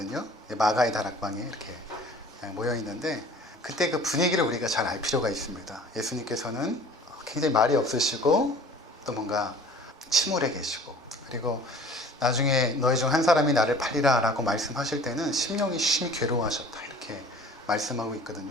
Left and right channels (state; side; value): normal; both; correlation 0.47